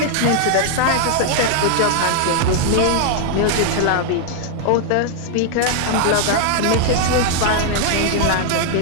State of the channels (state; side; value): different; both; correlation 0.00